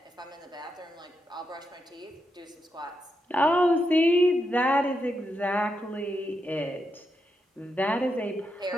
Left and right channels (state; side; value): normal; both; correlation 0.84